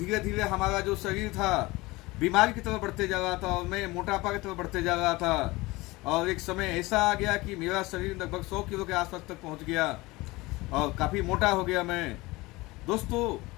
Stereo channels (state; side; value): quieter; right; 21.6 dB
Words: धीरे हमारा जो शरीर था बीमारी की तरफ बढ़ते जा रहा था और मैं मोटापा की तरफ बढ़ते जा रहा था। और एक समय ऐसा आ गया कि मेरा शरीर लगभग 100 किलो के आसपास तक पहुँच गया और काफ़ी मोटा हो गया मैं। दोस्तों,